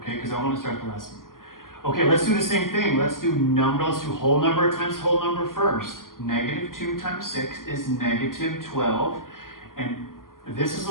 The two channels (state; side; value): late; right; 0.91 ms